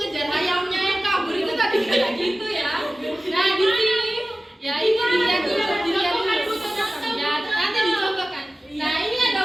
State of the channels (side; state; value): both; normal; correlation 0.97